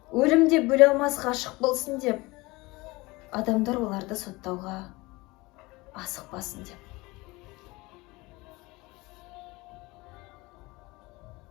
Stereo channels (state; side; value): quieter; right; 22.5 dB